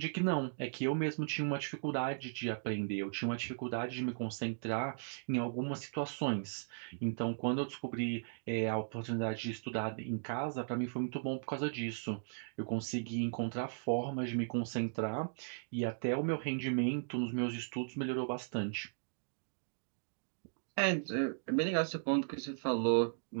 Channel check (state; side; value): silent; left; digital silence